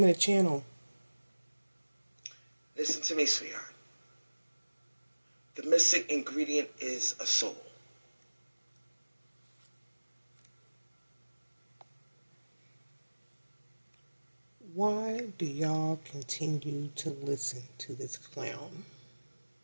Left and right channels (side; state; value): both; inverted; correlation -1.00